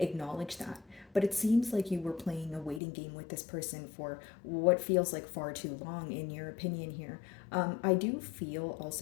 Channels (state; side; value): drops out; right; at 2.8 s